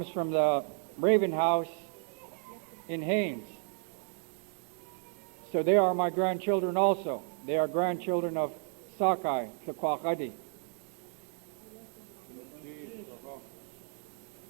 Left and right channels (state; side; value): silent; left; 56 dB below the other